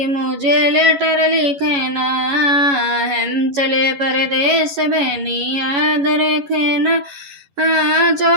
मुझे लेटर लिखना। हम चले परदेश, बहनी याद रखना।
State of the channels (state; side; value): late; left; 11 ms